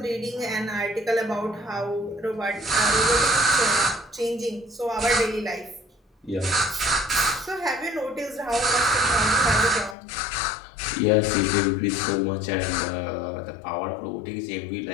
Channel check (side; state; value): right; drops out; at 10.0 s